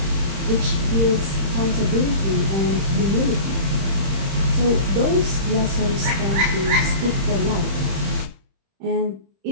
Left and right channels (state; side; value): late; left; 31 ms